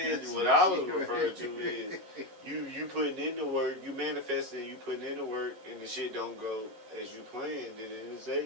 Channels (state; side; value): late; left; 11 ms